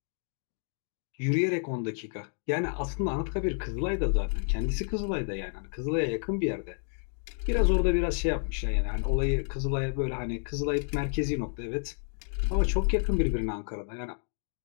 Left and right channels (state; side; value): silent; right; 58 dB below the other